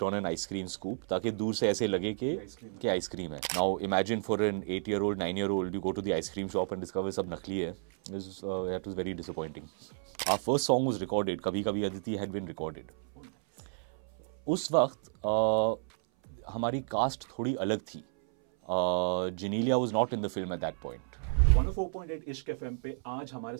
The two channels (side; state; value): left; silent; 56 dB below the other